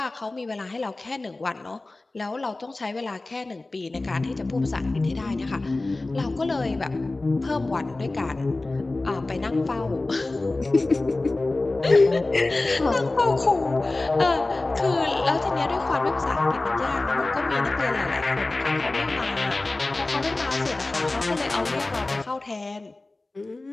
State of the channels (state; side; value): quieter; right; 3.1 dB